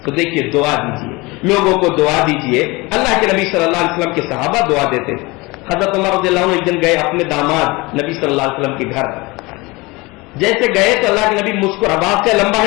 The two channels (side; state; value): right; quieter; 23.8 dB